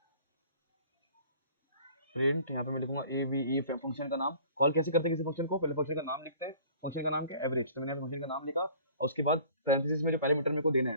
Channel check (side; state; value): both; inverted; correlation -0.49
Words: प्रिंट यहाँ पे मैं लिखूंगा ए वी ई, फंक्शन का नाम। कॉल कैसे करते हैं किसी फंक्शन को, पहले फंक्शन का नाम लिखते हैं, फंक्शन का नाम क्या, एवरेज, तो मैंने फंक्शन का नाम लिखा, और उसके बाद पैरेंथेसिस में जो पैरामीटर मेरे को देना